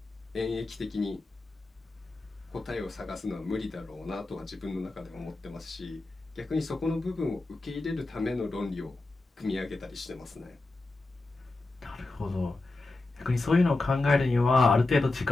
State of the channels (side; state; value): right; quieter; 3.2 dB